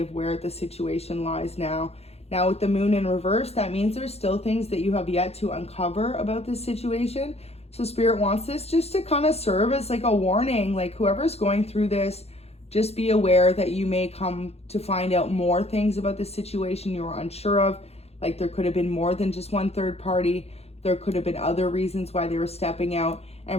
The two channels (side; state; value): right; late; 0.30 ms